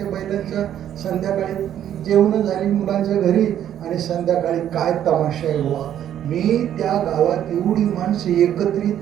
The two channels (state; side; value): quieter; left; 10.6 dB